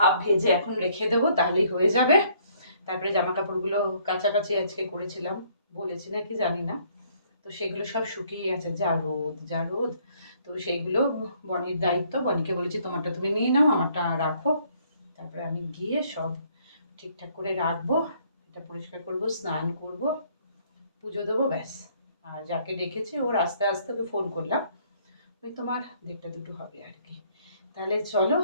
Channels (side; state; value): both; inverted; correlation -0.64